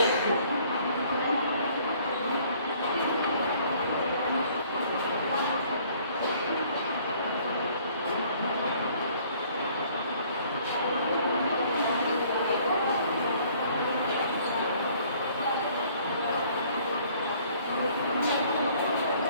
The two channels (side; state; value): both; inverted; correlation -0.58